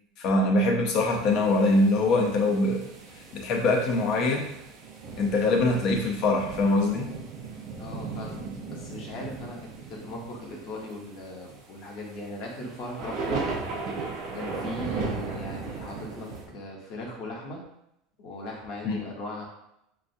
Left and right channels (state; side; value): normal; both; correlation 0.49